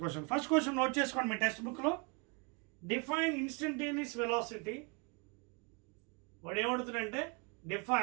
question. First question note చేసుకోండి మీ టెక్స్ట్ బుక్లో. Define instantaneous velocity. వాడు ఏమడుతుందంటే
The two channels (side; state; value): left; quieter; 32.5 dB